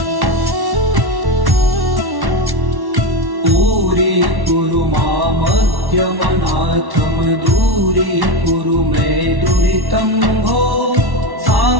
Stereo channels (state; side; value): late; left; 1.1 ms